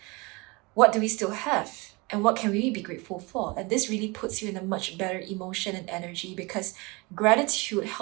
what do we still have? And what can we be grateful for? And this really puts you in a much better emotion and energy, because gratitude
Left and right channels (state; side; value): quieter; left; 26.3 dB